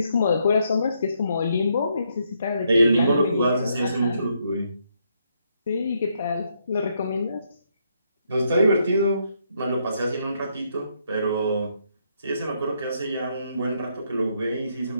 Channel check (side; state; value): both; inverted; correlation -0.75